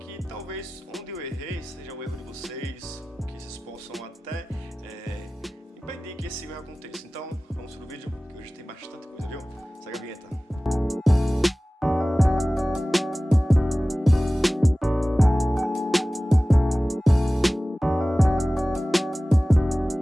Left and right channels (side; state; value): both; normal; correlation 0.97